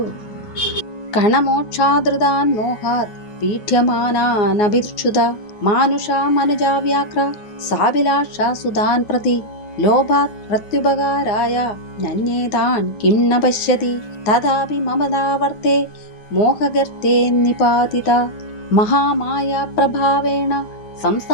कणमोक्षादृतान् मोहात् पीठ्यमानानभिक्षुधा मानुषा मनुजा व्याघ्र साभिलाषा सुधान् प्रति लोभात् प्रत्युपकाराय नन्येतान् किं न पश्यति तथापि ममदावर्ते मोहगर्ते निपातिता महामाया प्रभावेण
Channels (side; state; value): right; late; 9.6 ms